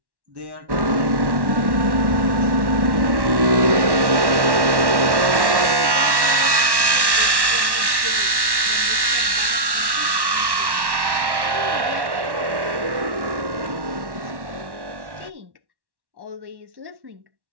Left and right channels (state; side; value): late; left; 1.1 ms